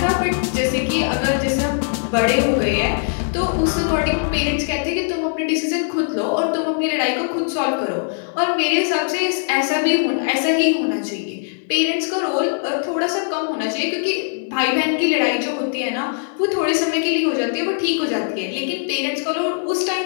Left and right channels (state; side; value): silent; right; digital silence